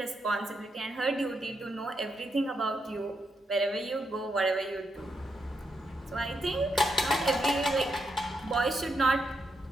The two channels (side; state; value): both; normal; correlation 0.82